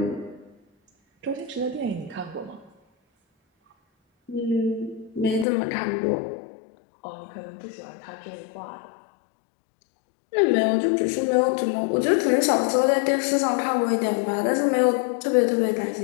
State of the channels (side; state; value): right; drops out; at 5.5 s